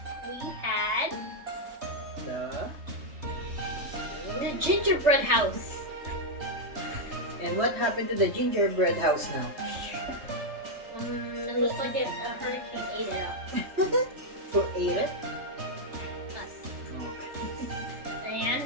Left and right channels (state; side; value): late; left; 3.3 ms